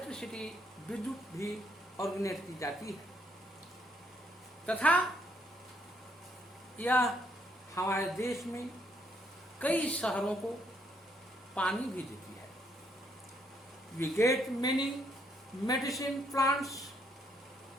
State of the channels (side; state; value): both; normal; correlation 0.72